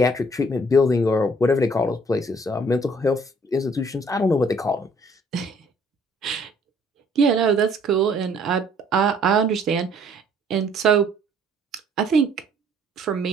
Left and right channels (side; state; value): both; normal; correlation 0.60